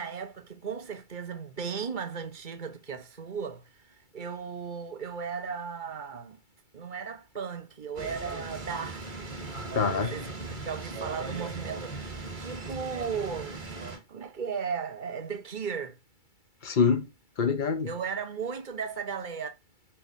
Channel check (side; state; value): right; late; 2.3 ms